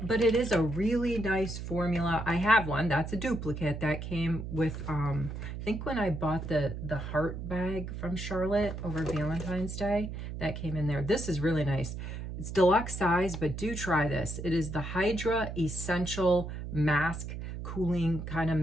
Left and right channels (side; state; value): right; noise; hum, 7 dB below the sound